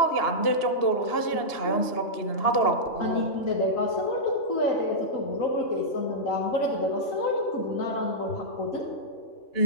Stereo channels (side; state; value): right; late; 2.9 ms